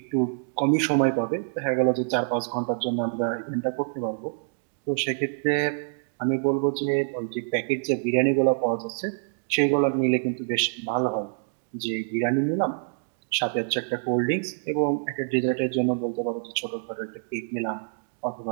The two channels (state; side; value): silent; left; digital silence